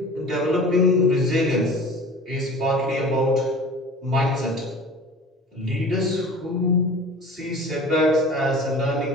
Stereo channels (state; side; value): normal; both; correlation 0.41